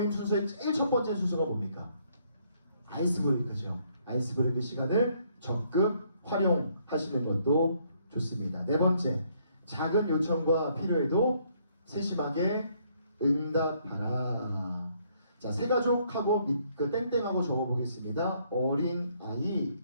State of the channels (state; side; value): inverted; both; correlation -0.68